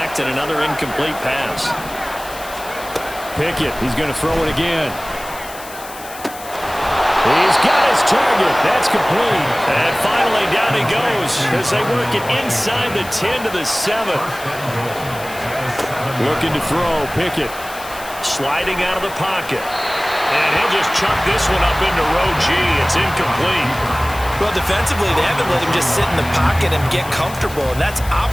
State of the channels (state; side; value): noise; left; hiss, 15 dB below the sound